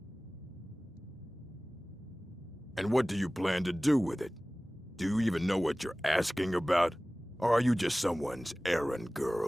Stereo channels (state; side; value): normal; both; correlation 0.98